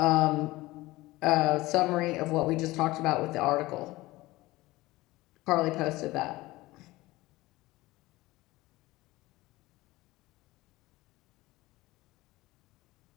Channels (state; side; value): quieter; right; 19.3 dB